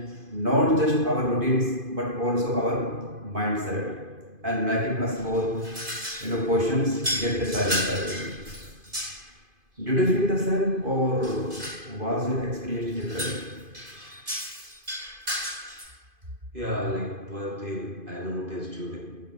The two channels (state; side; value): late; left; 2.5 ms